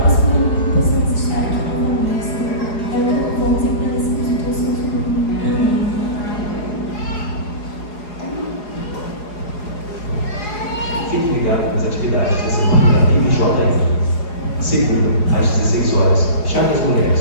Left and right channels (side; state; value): right; late; 4.8 ms